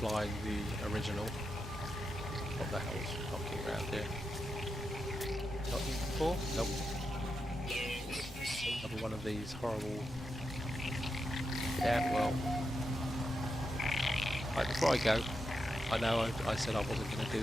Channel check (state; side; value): normal; both; correlation 0.86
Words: the original, what the hell is knocking around here? Not here before? Nope. Another one of these horrible. Yeah, well. Right, before I go, I know I said I wasn't going to